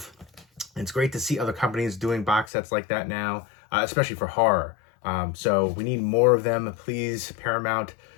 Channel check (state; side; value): drops out; right; at 2.5 s